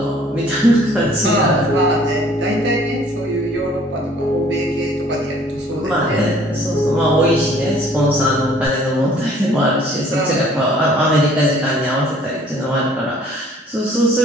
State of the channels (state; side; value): normal; both; correlation 0.56